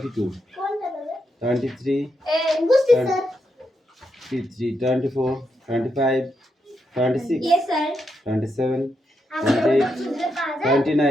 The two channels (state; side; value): normal; both; correlation 0.82